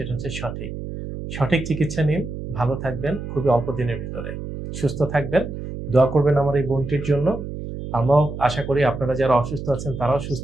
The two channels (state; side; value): noise; right; hum, 8 dB below the sound